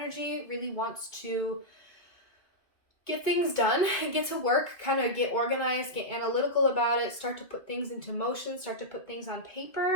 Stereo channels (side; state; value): right; late; 2.2 ms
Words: really wants to get things done, get to work, kind of get organized, get analytical about it, start to put things into motion, start to put things on